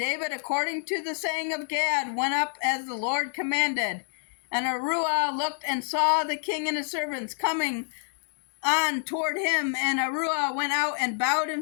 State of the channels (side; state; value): right; silent; digital silence